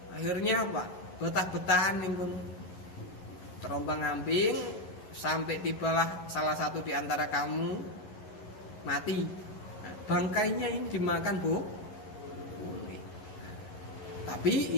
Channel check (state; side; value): late; right; 11 ms